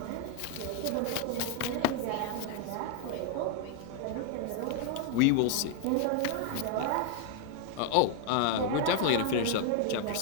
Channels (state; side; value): different; both; correlation 0.00